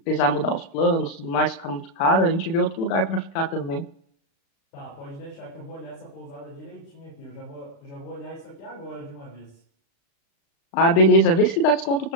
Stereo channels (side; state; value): right; late; 36 ms